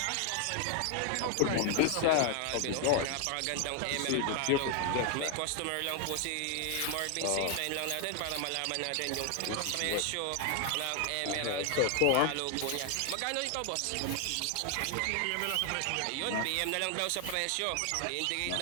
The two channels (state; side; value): different; both; correlation 0.01